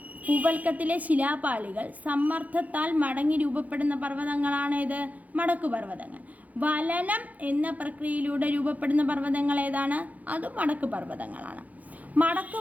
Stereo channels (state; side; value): late; left; 0.076 ms